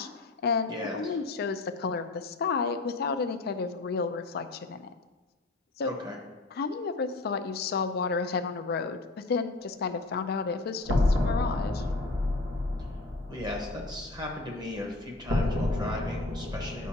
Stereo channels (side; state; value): right; quieter; 3.0 dB